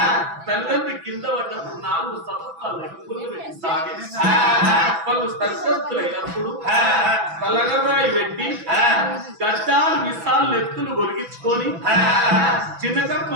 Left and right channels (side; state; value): left; late; 6.0 ms